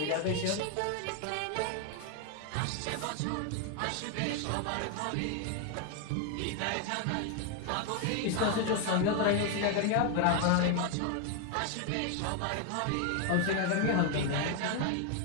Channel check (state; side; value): different; both; correlation 0.01